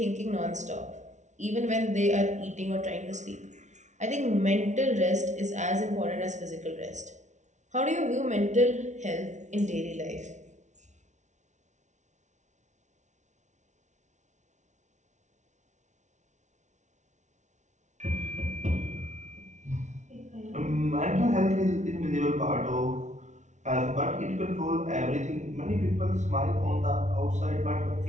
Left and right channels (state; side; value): late; left; 0.35 ms